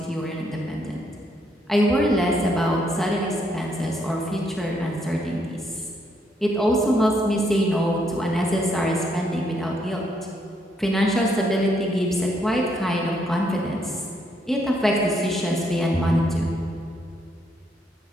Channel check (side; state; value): both; normal; correlation 0.73